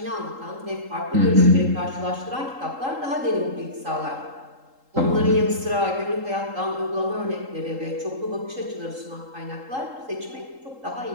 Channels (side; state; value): left; late; 3.8 ms